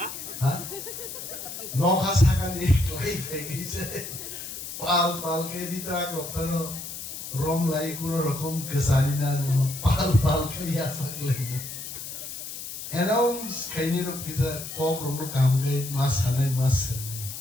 हा नखा साका नि क्लाई फेकिছে পাল পাল কে দিতরা রক্তনো রম লাই কোন রকম গসালি না পাল পাল খাইয়া সাকলে এনাউন্স খাইনি রক কিছা কক রম কাম গাই মাস হানাই মাস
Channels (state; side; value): noise; left; hiss, 9 dB below the sound